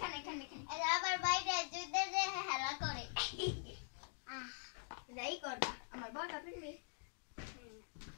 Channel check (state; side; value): silent; right; digital silence